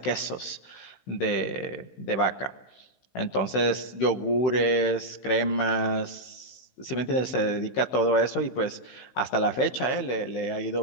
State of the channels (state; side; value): late; right; 16 ms